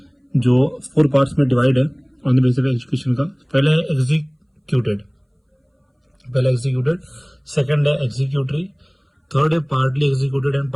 जो 4 पार्ट्स में डिवाइड है on the basis of execution का। पहला है एग्जीक्यूटेड, सेकंड है एग्जीक्यूटरी, थर्ड है partly executed and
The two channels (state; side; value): identical; both; correlation 1.00